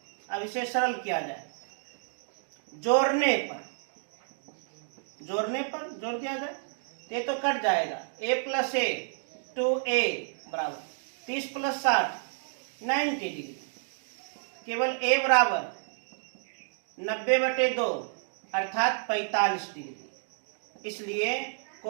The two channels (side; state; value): left; silent; digital silence